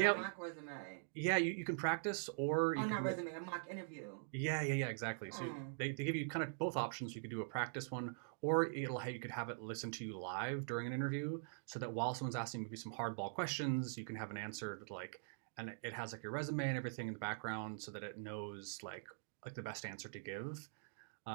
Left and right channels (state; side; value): silent; left; digital silence